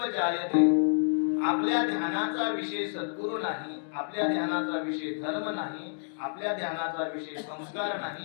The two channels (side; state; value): right; silent; digital silence